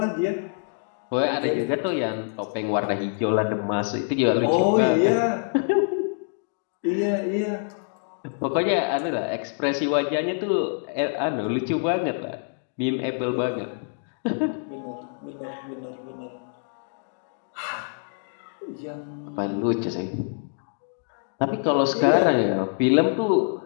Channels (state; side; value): silent; right; digital silence